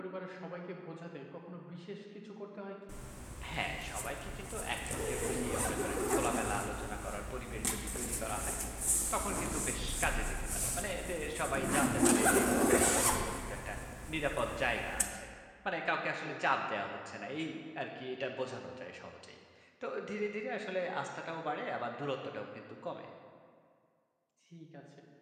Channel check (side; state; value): both; identical; correlation 1.00